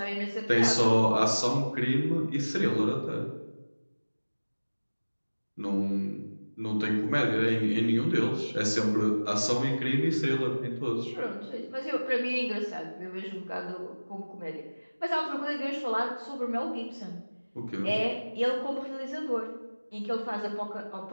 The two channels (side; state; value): both; inverted; correlation -1.00